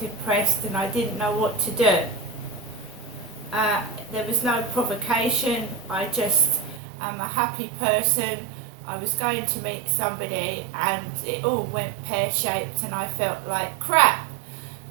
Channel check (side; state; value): left; drops out; at 6.8 s